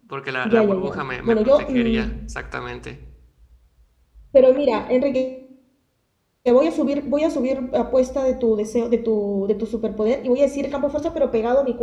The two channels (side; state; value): both; identical; correlation 1.00